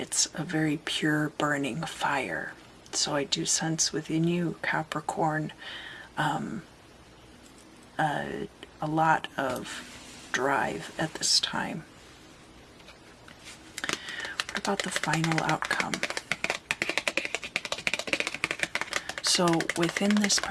a very pure burning fire. So I do sense within you, Capricorn, a lot of drive at this time. What about the final outcome? So within this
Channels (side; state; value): both; identical; correlation 1.00